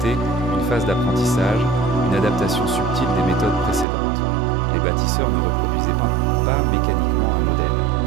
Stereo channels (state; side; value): drops out; left; at 3.9 s